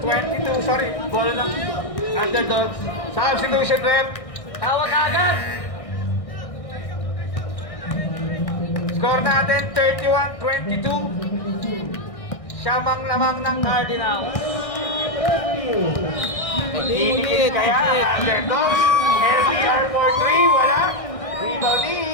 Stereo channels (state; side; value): late; right; 1.6 ms